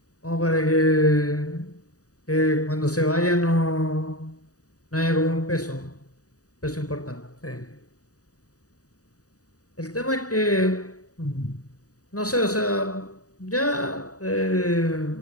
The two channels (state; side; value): late; right; 0.66 ms